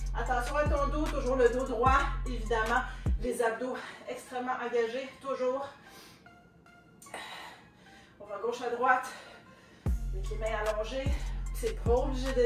Attention à ton dos, toujours le dos droit, évidemment. Les abdos extrêmement engagés, toujours. On va gauche à droite, avec les mains allongées. C'est pas obligé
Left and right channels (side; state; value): both; identical; correlation 1.00